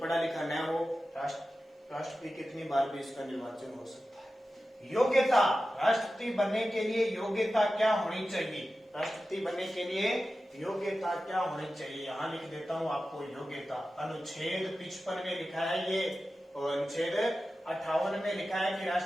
लिखा न हो, राष्ट्रपति कितनी बार भी इसका निर्वाचन हो सकता है। योग्यता, राष्ट्रपति बनने के लिए योग्यता क्या होनी चाहिए? राष्ट्रपति बनने के लिए योग्यता क्या होनी चाहिए? यहां लिख देता हूं आपको योग्यता। अनुच्छेद 55 में लिखा है ये, और अनुच्छेद 58 में लिखा है कि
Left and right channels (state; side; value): normal; both; correlation 0.94